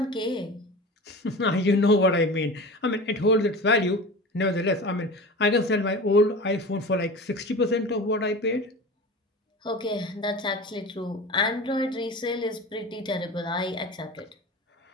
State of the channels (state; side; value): normal; both; correlation 0.33